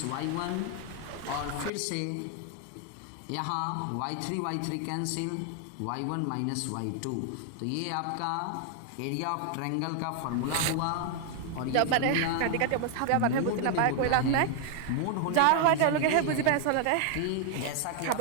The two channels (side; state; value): both; different; correlation 0.00